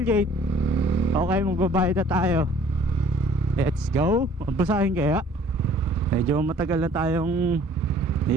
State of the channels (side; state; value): both; normal; correlation 0.54